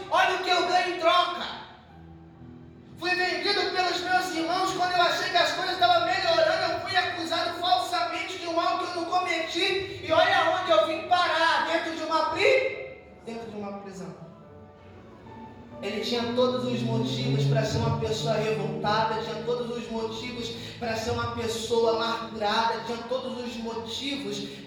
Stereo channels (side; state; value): both; identical; correlation 1.00